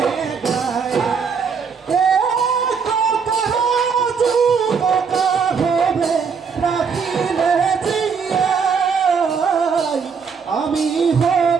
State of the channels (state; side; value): quieter; left; 5.9 dB